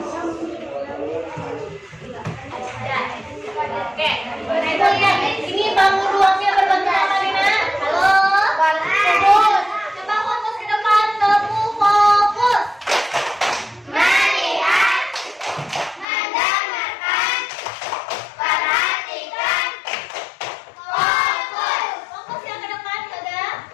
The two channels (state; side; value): drops out; right; at 16.1 s